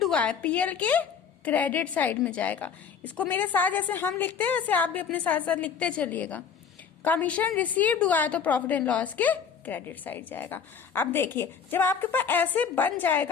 हुआ है पीएल के क्रेडिट साइड में जाएगा. इसको मेरे साथ जैसे हम लिखते हैं वैसे आप भी अपने साथ साथ लिखते चलिएगा. कमीशन रिसीव्ड हुआ है तो प्रॉफिट एंड लॉस के क्रेडिट साइड जाएगा. अब देखिए जब आपके पास ऐसे बन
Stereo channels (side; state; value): right; quieter; 6.8 dB